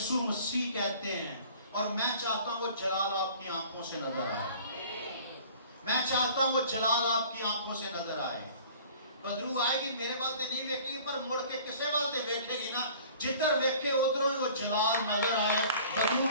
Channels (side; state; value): both; inverted; correlation -0.48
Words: مسیح کہتے ہیں. اور میں چاہتا ہوں وہ جلال آپ کی آنکھوں سے نظر آئے. میں چاہتا ہوں وہ جلال آپ کی آنکھوں سے نظر آئے. بدرو آئے گی میرے والتے نہیں ویکھے گی, پر مڑ کے کسے والتے ویکھے گی نا, جدھر ویکھے ادھروں وہ جلال نظر آئے. بدرو